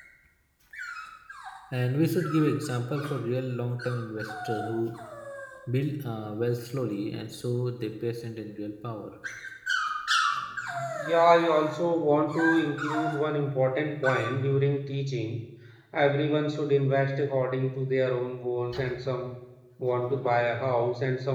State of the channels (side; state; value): both; identical; correlation 1.00